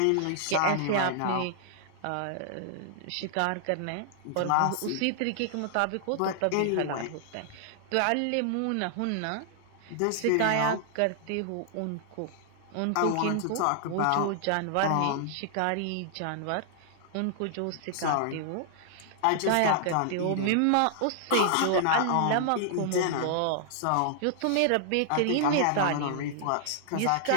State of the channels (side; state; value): both; different; correlation -0.01